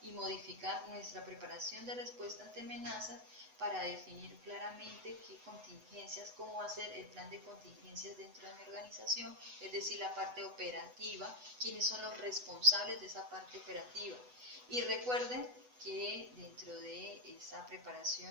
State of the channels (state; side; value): late; left; 8.0 ms